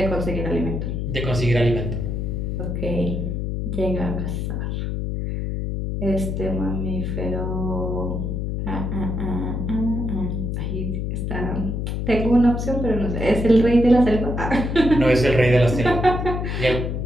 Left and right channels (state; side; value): noise; left; hum, 2 dB below the sound